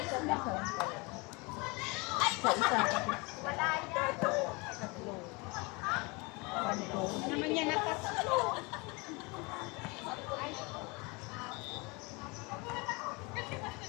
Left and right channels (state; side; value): quieter; right; 27.5 dB